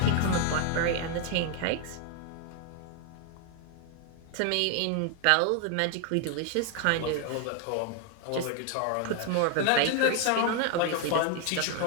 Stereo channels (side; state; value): both; different; correlation 0.00